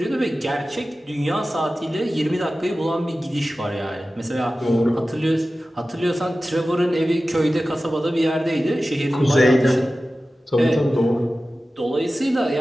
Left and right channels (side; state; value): both; normal; correlation 0.95